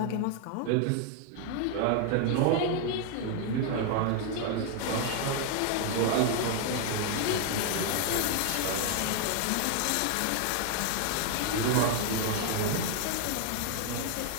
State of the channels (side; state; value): both; different; correlation 0.00